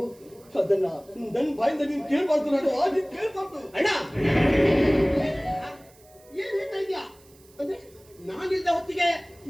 ಅದನ್ನ ನನ್ನ ಬಾಯಿಂದ ನೀನು ಕೇಳ್ಬಾರ್ದು. ನಾನು ಕೇಳ್ಬಾರ್ದು. ಅಣ್ಣ ಏನ್ ಹೇಳ್ತಾ ಇದ್ಯಾ? ಅಂದ್ರೆ ನಾನಿದ್ದ ಹೊತ್ತಿಗೆ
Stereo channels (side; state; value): right; noise; hiss, 28 dB below the sound